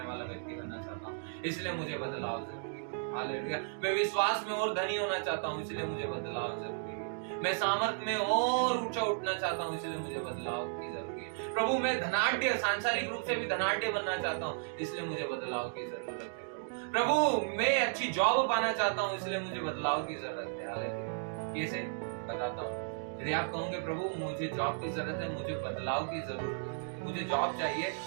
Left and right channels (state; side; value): silent; left; digital silence